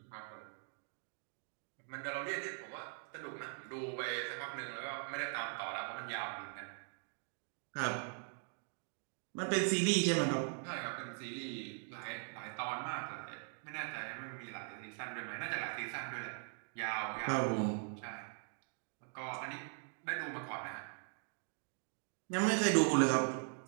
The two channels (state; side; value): silent; left; 50 dB below the other